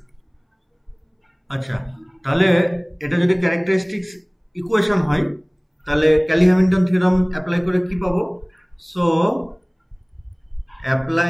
আচ্ছা, তাহলে এটা যদি characteristics equation হয় তাহলে ক্যালি-হ্যামিল্টন থিওরাম অ্যাপ্লাই করে কি পাবো? So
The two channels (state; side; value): identical; both; correlation 1.00